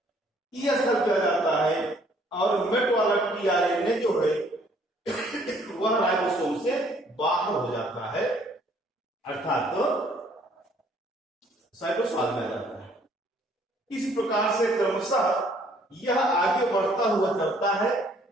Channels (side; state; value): both; normal; correlation 0.62